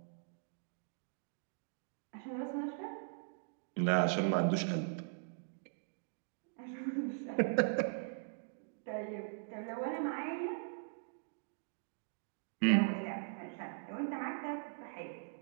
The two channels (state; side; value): silent; left; digital silence